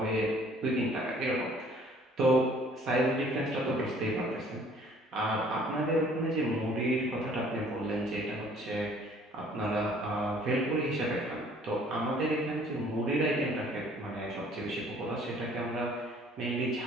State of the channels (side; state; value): both; normal; correlation 0.56